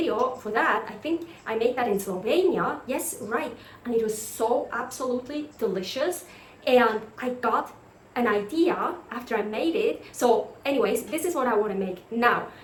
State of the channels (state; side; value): identical; both; correlation 1.00